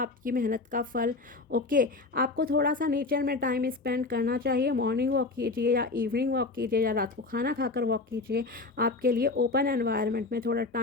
मेहनत का फल। ओके, आपको थोड़ा सा नेचर में टाइम स्पेंड करना चाहिए। मॉर्निंग वॉक कीजिए या इवनिंग वॉक कीजिए या रात को खाना खाकर वॉक कीजिए। आपके लिए ओपन एनवायरनमेंट में थोड़ा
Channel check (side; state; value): right; quieter; 3.6 dB